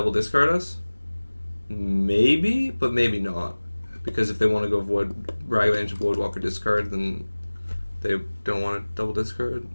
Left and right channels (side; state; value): both; inverted; correlation -1.00